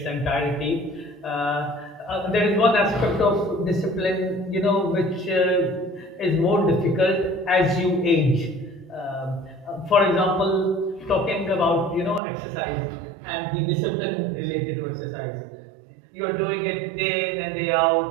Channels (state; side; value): drops out; left; at 12.2 s